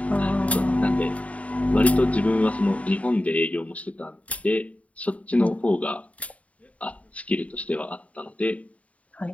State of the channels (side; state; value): right; late; 0.067 ms